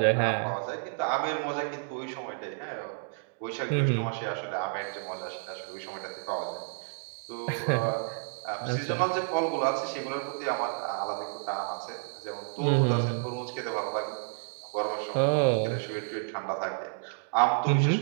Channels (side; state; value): left; silent; digital silence